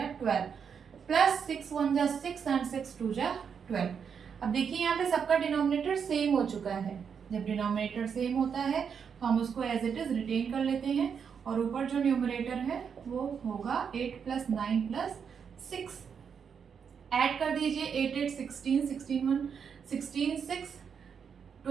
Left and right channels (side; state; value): left; quieter; 6.9 dB